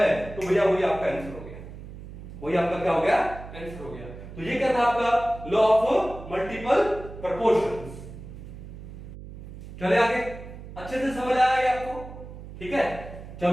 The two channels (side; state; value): right; noise; hum, 13 dB below the sound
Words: तो भैया वही आपका आंसर हो गया, वही आपका क्या हो गया आंसर हो गया। तो ये क्या था आपका लॉ ऑफ मल्टीपल प्रोपोर्शंस। चले आगे, अच्छे से समझ आया ये आपको, ठीक है।